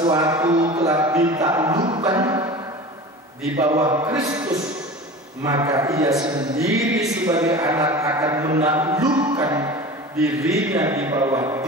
telah ditaklukkan di bawah Kristus, maka ia sendiri sebagai anak akan menaklukkan dirinya di bawah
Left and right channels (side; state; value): both; normal; correlation 0.35